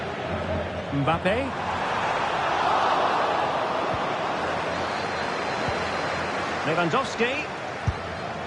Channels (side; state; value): both; identical; correlation 1.00